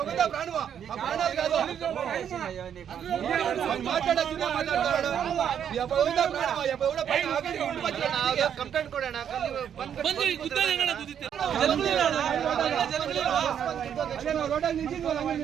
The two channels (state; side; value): quieter; left; 8.8 dB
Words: ప్రాణమా ఆ ప్రాణాలు కాదు ಕಂಪ್ಲೇಂಟ್ ಕೊಡೋಣ